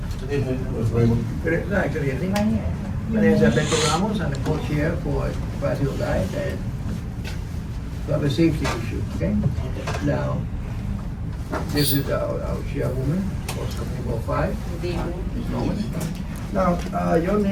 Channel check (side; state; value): both; identical; correlation 1.00